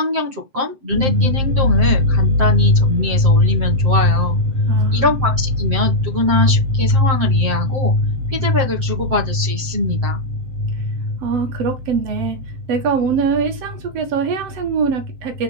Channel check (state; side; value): late; left; 7.7 ms